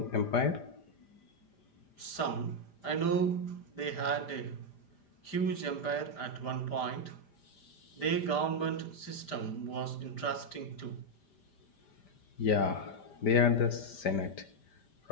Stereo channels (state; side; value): late; right; 5.0 ms